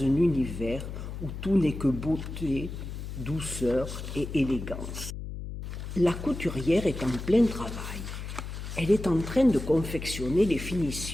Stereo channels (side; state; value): left; noise; hum, 8 dB below the sound